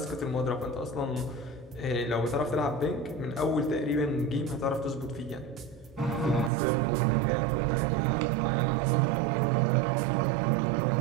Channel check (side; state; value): left; drops out; at 6.5 s